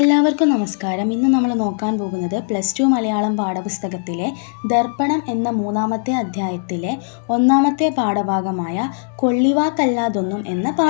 നമസ്കാരം. ഇന്ന് നമ്മൾ നോക്കാൻ പോകുന്നത് +2 മലയാളം പാഠപുസ്തകത്തിലെ ദർപ്പണം എന്ന 3-ാമത്തെ അധ്യായത്തിലെ 1-ാമത്തെ പാഠഭാഗമായ കൊള്ളിവാക്കല്ലാതൊന്നും എന്ന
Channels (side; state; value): right; silent; digital silence